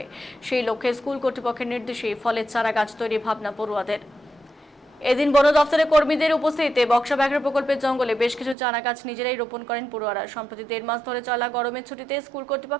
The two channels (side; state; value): left; drops out; at 8.6 s